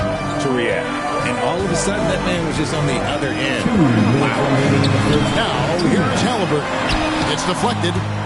to react. And all of a sudden, that man was just on the other end. Wow. Now, here's Halliburton. It's deflected.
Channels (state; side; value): identical; both; correlation 1.00